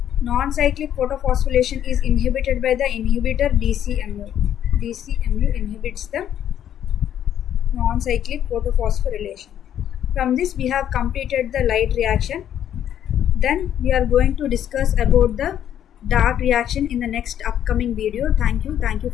non-cyclic photophosphorylation is inhibited by the inhibitor DCMU. DCMU inhibits the non-cyclic photophosphorylation. From this we have completed the light reaction. Then we are going to discuss about the dark reaction in the next upcoming video. Thank you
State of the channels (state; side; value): quieter; right; 10.3 dB